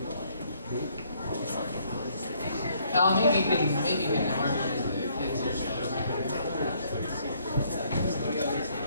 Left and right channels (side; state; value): both; inverted; correlation -0.67